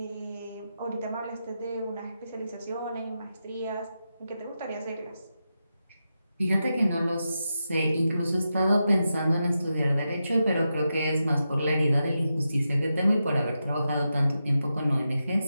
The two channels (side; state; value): both; inverted; correlation -0.88